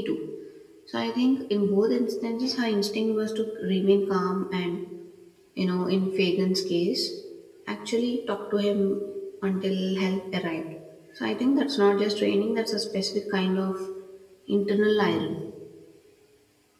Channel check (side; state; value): both; identical; correlation 1.00